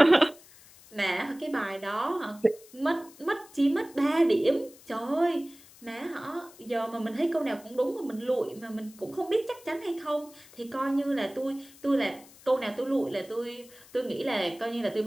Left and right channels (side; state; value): left; noise; hiss, 23 dB below the sound